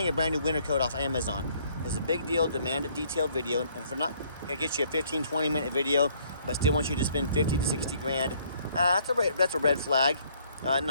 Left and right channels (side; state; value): both; inverted; correlation -0.63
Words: a brand new winter coat off Amazon. It's a big deal. Demand a detailed video. And if we're not gonna get you a 15-20 minute video, but still want you to spend 50 to 60 grand, that's a red flag.